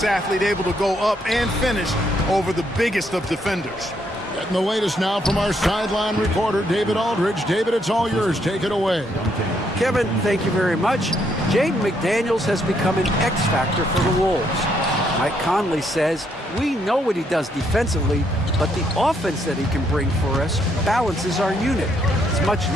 athlete, able to go up and finish over the biggest of defenders. Getting the latest now from our sideline reporter, David Aldridge. David, it's all yours. Take it away. Kevin, thank you very much. Jaden McDaniels has become an X factor for the Wolves. Mike Conley says, we know what he does defensively, but the offense that he can bring for us balances our unit. It's much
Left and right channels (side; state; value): both; normal; correlation 0.73